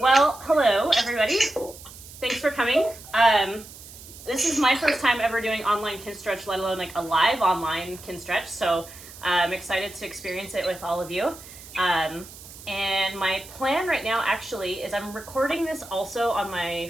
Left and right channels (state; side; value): noise; right; hiss, 17 dB below the sound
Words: Well, hello everybody. Thanks for coming. This is my first time ever doing online Kinstretch, let alone like a live online Kinstretch. So I'm excited to experience it with all of you. And my plan right now actually is I'm recording this also on my